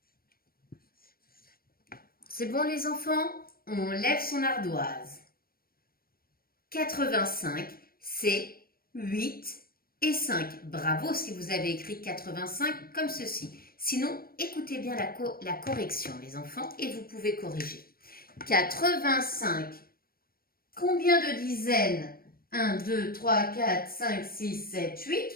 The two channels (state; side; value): late; right; 0.43 ms